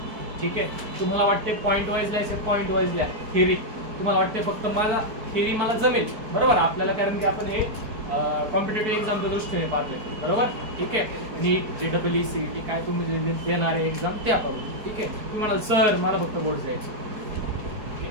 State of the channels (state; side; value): late; left; 4.6 ms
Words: ठीक आहे? तुम्हाला वाटते पॉईंट वाईज लिहायचे, पॉईंट वाईज लिहा. थिअरी तुम्हाला वाटते फक्त मला थिअरी मला जमेल, बरोबर? आपल्याला कारण की आपण हे कॉम्पिटेटिव्ह एक्झामच्या दृष्टीने पाहतोय, बरोबर? ठीक आहे. नीट, JEE, CET काय तुम्ही देणारे एक्झाम ते आपण, ठीक आहे? तुम्ही म्हणाल सर मला फक्त बोर्ड द्यायचे,